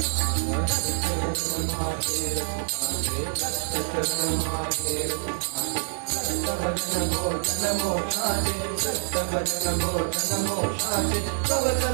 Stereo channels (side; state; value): left; silent; 61 dB below the other